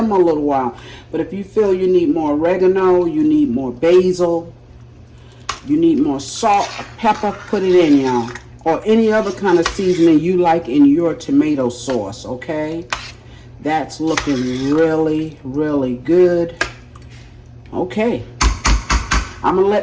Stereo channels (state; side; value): identical; both; correlation 1.00